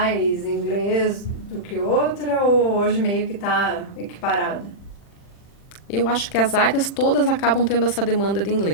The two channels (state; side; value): late; right; 40 ms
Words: inglês do que outra, ou hoje meio que está equiparada? Eu acho que as áreas todas acabam tendo essa demanda de